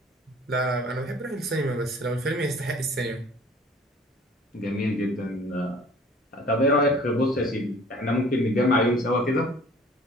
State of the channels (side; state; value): both; normal; correlation 0.50